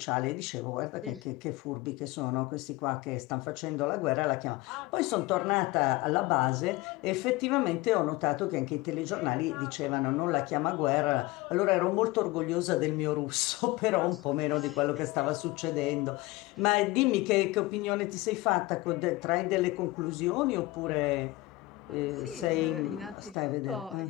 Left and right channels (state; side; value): quieter; right; 20.0 dB